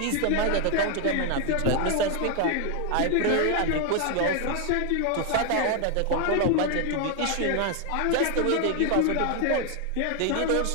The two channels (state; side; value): different; both; correlation 0.00